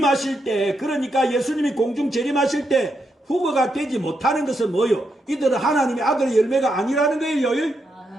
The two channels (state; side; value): normal; both; correlation 0.82